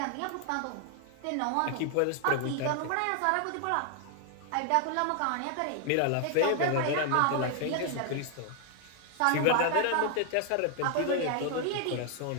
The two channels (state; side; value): different; both; correlation 0.00